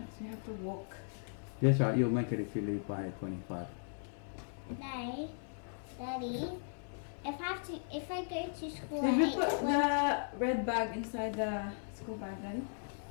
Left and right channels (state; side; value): silent; right; 53 dB below the other